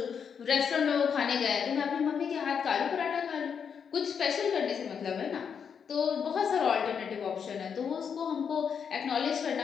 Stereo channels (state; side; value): quieter; right; 7.0 dB